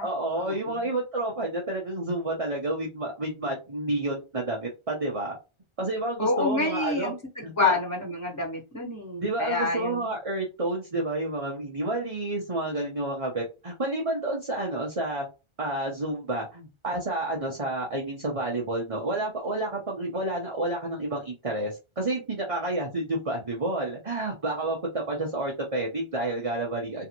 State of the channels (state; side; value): late; left; 1.3 ms